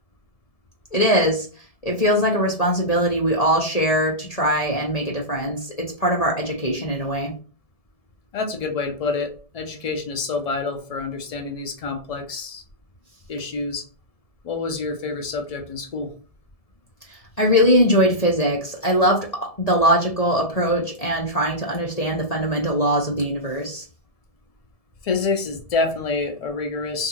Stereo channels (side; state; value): right; late; 1.7 ms